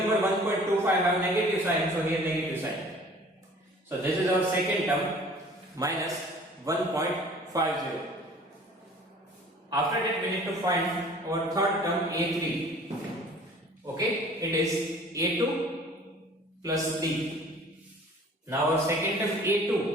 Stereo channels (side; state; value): both; normal; correlation 0.49